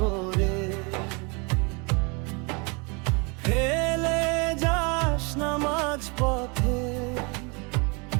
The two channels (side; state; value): left; quieter; 31.0 dB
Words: ফেলে যাস না মাঝ পথে।